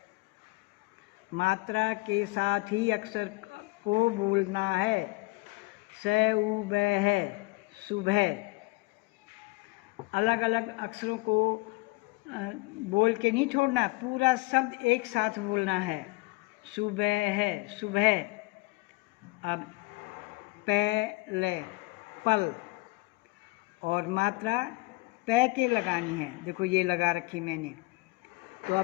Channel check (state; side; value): quieter; right; 23.3 dB